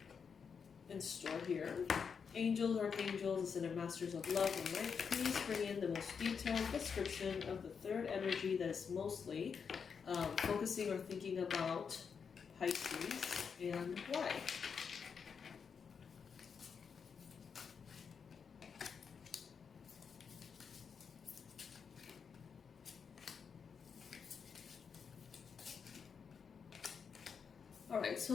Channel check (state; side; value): quieter; right; 6.3 dB